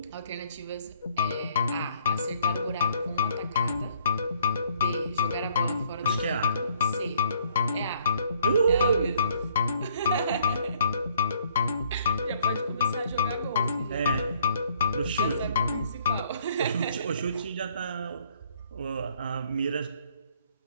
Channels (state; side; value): inverted; both; correlation -0.64